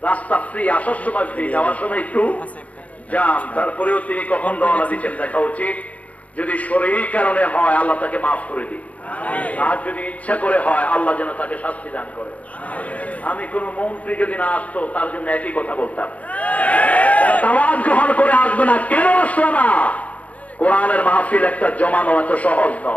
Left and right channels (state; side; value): late; right; 0.068 ms